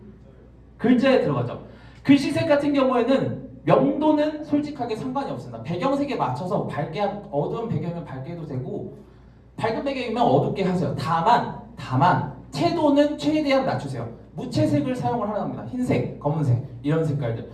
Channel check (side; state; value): both; identical; correlation 1.00